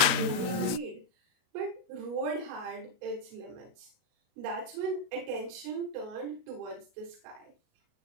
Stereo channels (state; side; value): late; left; 37 ms